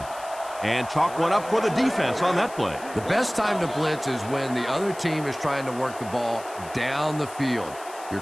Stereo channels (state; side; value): noise; left; hiss, 18 dB below the sound